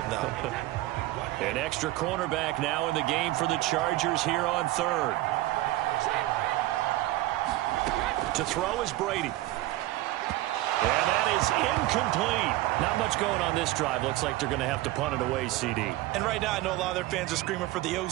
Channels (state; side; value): quieter; left; 17.0 dB